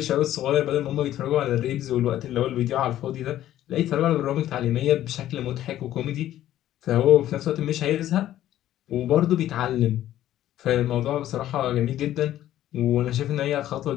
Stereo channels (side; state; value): right; quieter; 12.9 dB